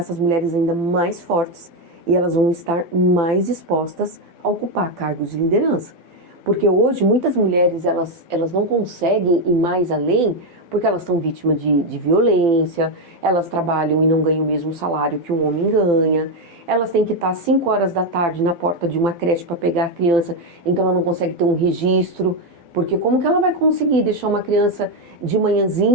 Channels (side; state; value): left; late; 12 ms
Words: mulheres ainda mais fortes e elas vão estar mais dispostas a ocupar cargos de liderança. Porque hoje muitas mulheres elas não conseguem ir mais além porque elas estão vítimas de violência, elas trabalham e não ganham o mesmo salário que um homem ganha, elas têm que estar às 5 horas da tarde na porta de uma creche para pegar a criança, então ela não consegue ter um registro, porque como que ela vai conseguir deixar uma criança de